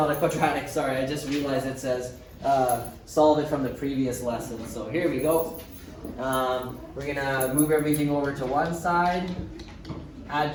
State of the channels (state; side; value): identical; both; correlation 1.00